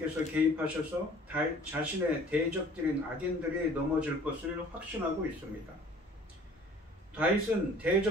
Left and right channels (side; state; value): both; normal; correlation 0.51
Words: 개입하셔서 자신의 대적들인 악인들이 넘어질 것을 확신하고 있습니다. 다윗은